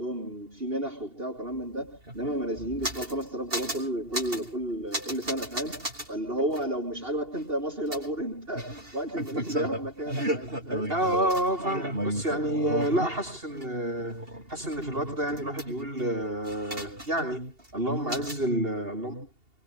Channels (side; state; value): left; late; 2.8 ms